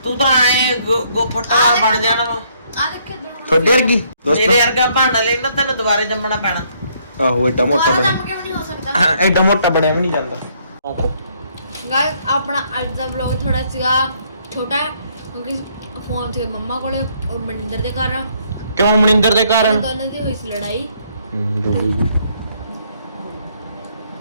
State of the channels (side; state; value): both; inverted; correlation -0.68